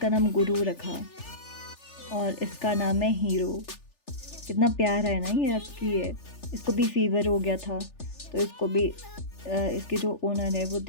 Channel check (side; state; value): right; late; 3.4 ms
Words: नाम गुरु रखा। और इसका नाम है हीरो। कितना प्यारा है ना, ये हस्की है। इसको भी फीवर हो गया था, तो इसको भी इसके जो ओनर है वो